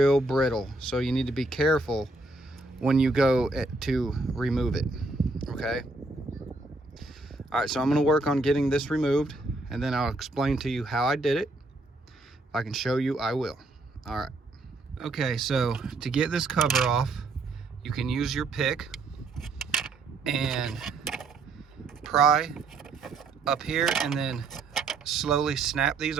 brittle. So you need to be careful when you go to remove it, okay? All right, so I'm gonna work on getting this removed, and then I'll explain to you how I did it. If I can show you, I will. All right. Okay, so to get this cover off, you can use your pick and pry up here and then slowly snap these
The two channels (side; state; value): left; quieter; 3.2 dB